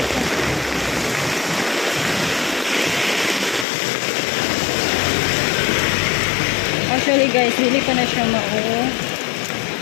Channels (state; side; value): drops out; right; at 3.7 s